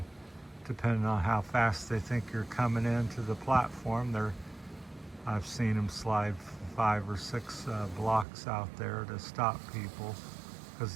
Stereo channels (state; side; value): drops out; left; at 8.2 s